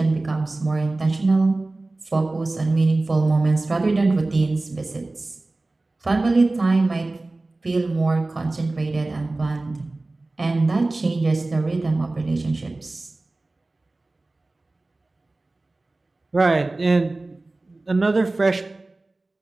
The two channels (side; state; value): left; quieter; 3.0 dB